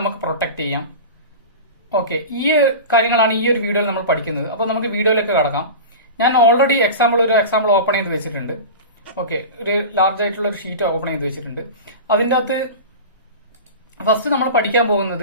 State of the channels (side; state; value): both; inverted; correlation -0.30